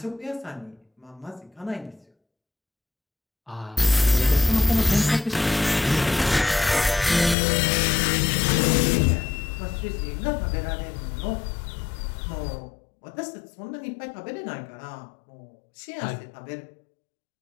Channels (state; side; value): drops out; right; at 7.4 s